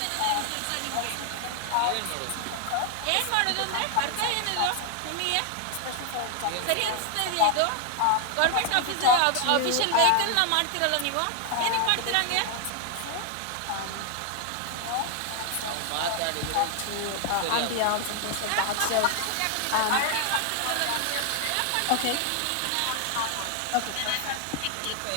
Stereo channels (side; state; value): both; different; correlation 0.00